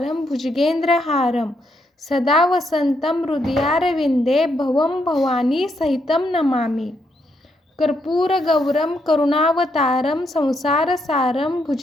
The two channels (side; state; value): both; normal; correlation 0.77